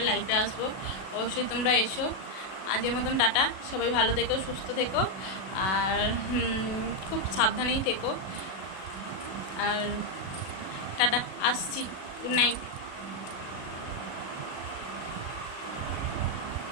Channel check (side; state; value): right; late; 37 ms